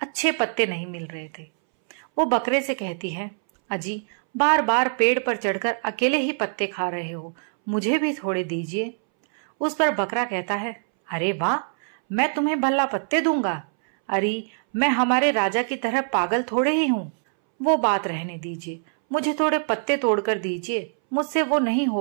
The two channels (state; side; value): silent; left; 63 dB below the other